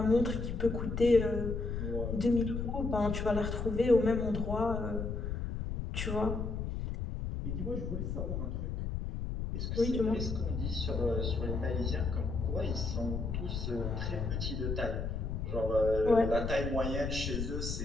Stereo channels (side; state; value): left; noise; rumble, 3 dB below the sound